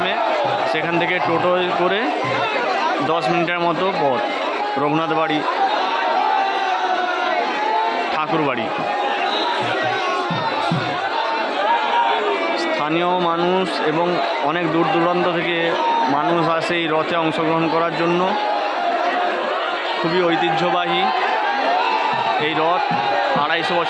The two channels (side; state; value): both; identical; correlation 1.00